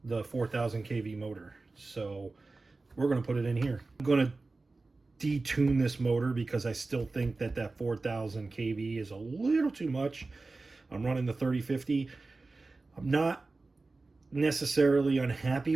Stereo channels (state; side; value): quieter; left; 3.5 dB